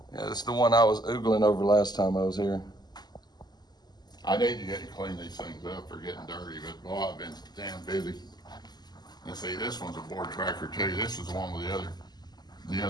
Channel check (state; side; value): late; right; 0.20 ms